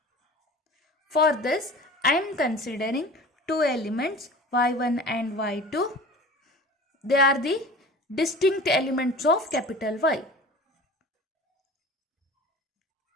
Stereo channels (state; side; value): normal; both; correlation 0.39